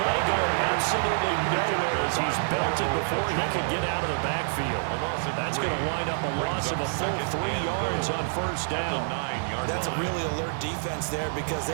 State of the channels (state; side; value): silent; left; digital silence